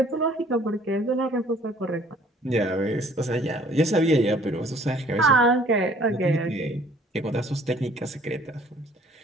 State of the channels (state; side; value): normal; both; correlation 0.57